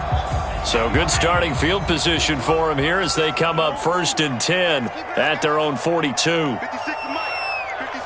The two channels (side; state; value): both; identical; correlation 1.00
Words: So good starting field position for him here as they come up 1st and 10 at their own 42.